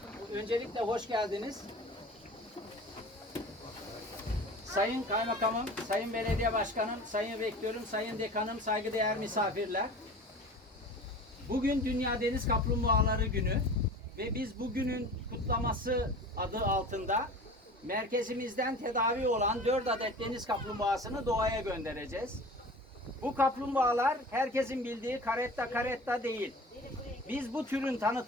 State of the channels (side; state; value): both; normal; correlation 0.39